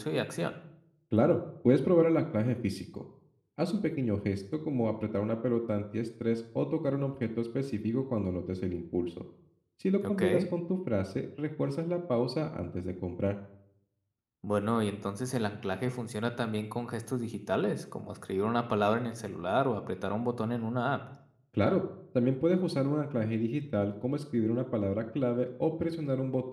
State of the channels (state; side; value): identical; both; correlation 1.00